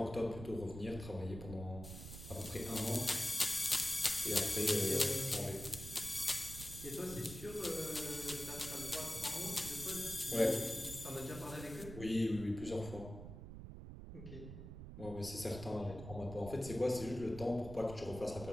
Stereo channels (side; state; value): right; noise; rumble, 11 dB below the sound